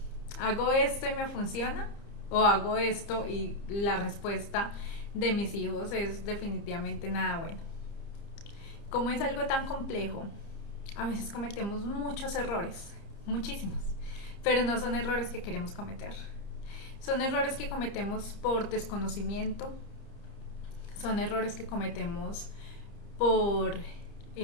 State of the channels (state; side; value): late; right; 30 ms